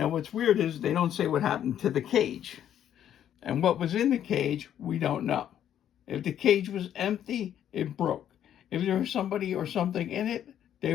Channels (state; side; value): quieter; right; 10.3 dB